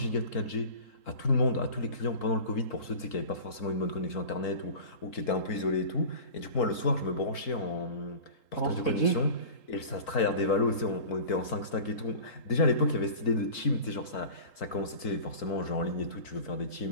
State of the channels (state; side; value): late; right; 4.5 ms